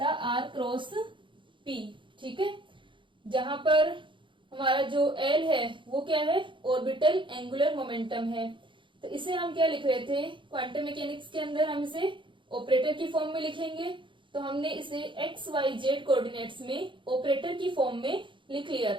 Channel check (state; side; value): late; left; 0.24 ms